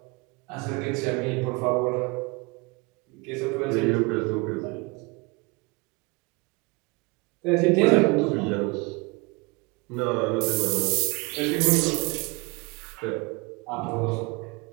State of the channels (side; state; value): left; quieter; 27.2 dB